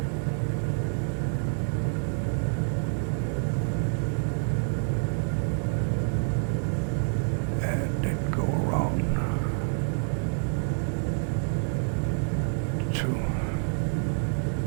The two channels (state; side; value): silent; left; digital silence